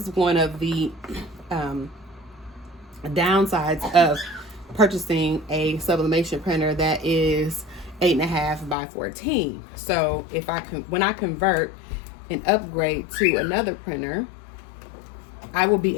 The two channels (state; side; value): drops out; right; at 8.8 s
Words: one of the downsides of purchasing a sublimation printer that is 8.5 by 14. So if when I convert and upgrade to another printer, I will